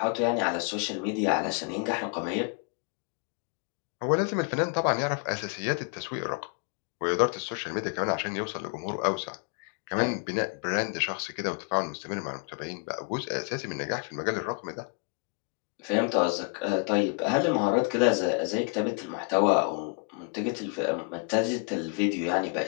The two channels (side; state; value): right; quieter; 35.5 dB